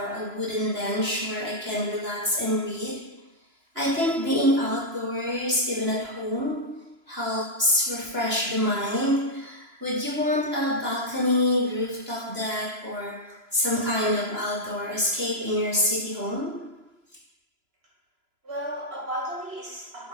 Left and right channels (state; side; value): late; left; 3.0 ms